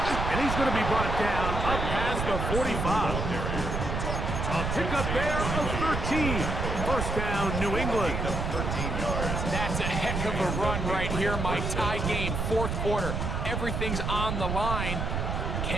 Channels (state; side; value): noise; right; rumble, 2 dB below the sound